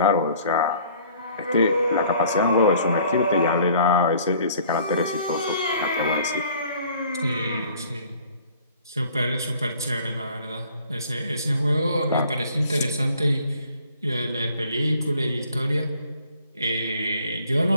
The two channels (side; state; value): both; inverted; correlation -0.54